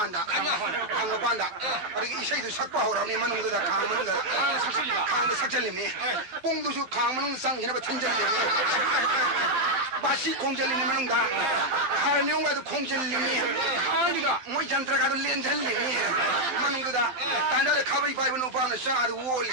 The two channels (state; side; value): late; left; 12 ms